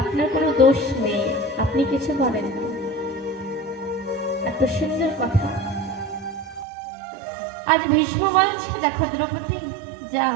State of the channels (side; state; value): left; drops out; at 6.7 s